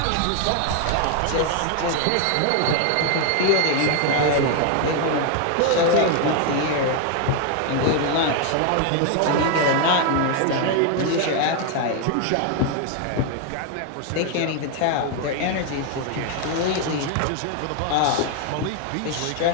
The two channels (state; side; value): different; both; correlation 0.00